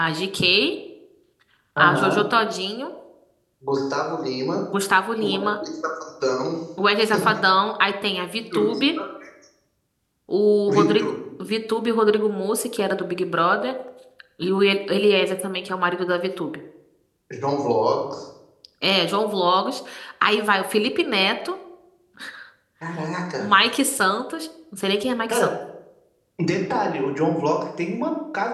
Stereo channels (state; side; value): identical; both; correlation 1.00